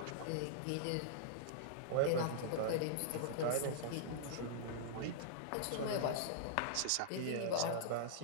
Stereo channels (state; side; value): different; both; correlation -0.02